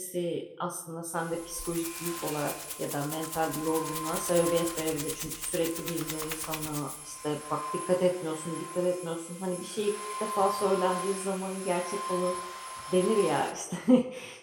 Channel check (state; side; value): identical; both; correlation 1.00